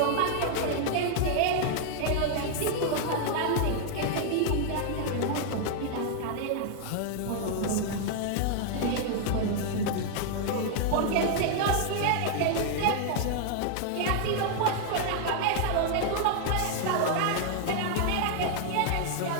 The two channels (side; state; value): both; different; correlation 0.00